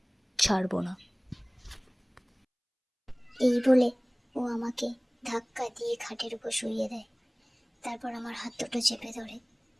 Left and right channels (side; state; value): both; identical; correlation 1.00